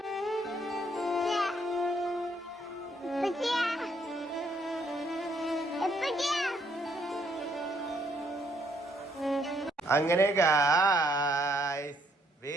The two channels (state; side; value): normal; both; correlation 0.70